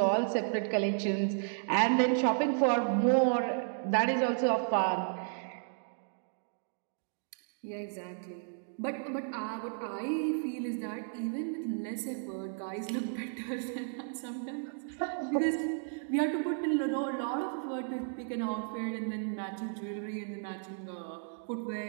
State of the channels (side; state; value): left; silent; digital silence